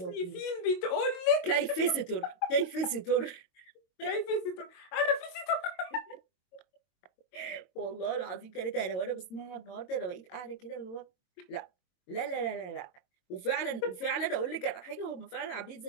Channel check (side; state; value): right; late; 22 ms